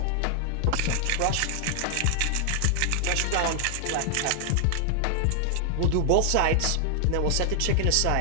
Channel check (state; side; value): different; both; correlation 0.00